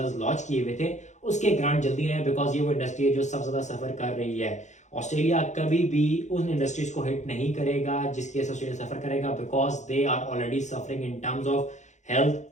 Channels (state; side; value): late; right; 0.34 ms